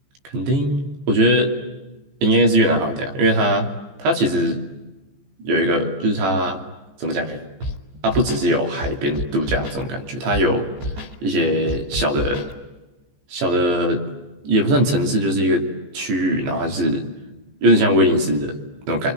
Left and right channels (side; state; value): left; late; 14 ms